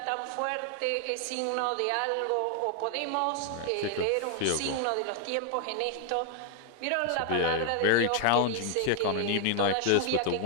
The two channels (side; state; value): both; different; correlation 0.00